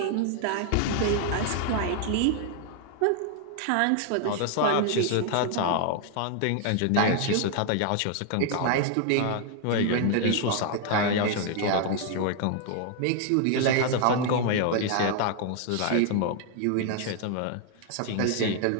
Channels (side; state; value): both; different; correlation 0.00